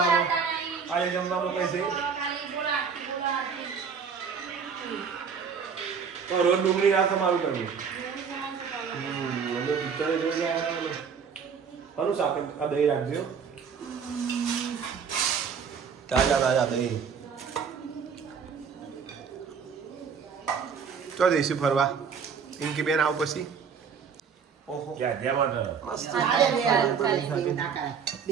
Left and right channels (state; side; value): quieter; left; 6.4 dB